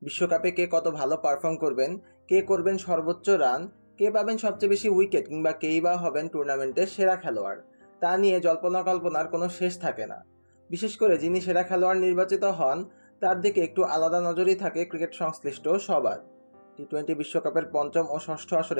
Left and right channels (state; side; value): inverted; both; correlation -1.00